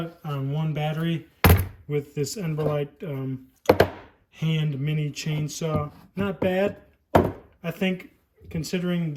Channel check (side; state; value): both; identical; correlation 1.00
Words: on one battery with this EnBrilite hand mini chainsaw. Not bad. I think considering